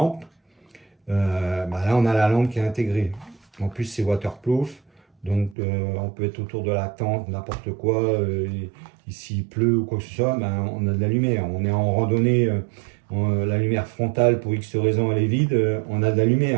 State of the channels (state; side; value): drops out; left; at 5.6 s